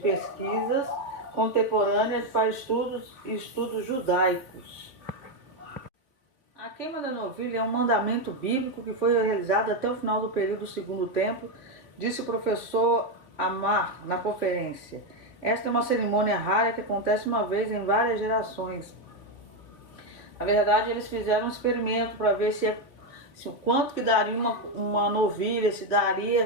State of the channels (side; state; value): right; late; 3.7 ms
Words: pesquisas contemporâneas para estudos judaicos. A queima da novilha é um mandamento bíblico que foi realizado até o final do período do Segundo Templo, disse o professor Amar na conferência. Esta é uma cerimônia rara que acontece uma vez em várias gerações. Na verdade, eles fizeram um experimento para ver se quanto que daria uma novilha,